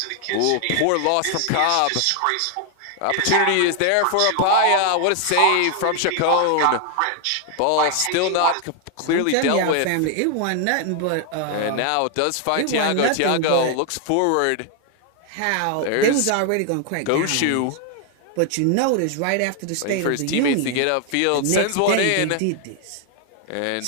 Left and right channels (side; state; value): both; different; correlation 0.00